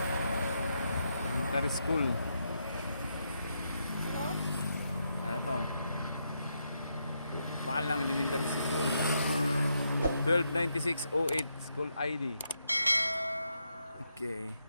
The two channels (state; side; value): inverted; both; correlation -0.81